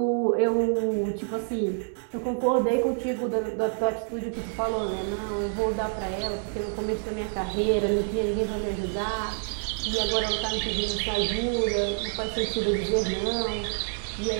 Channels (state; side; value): silent; left; digital silence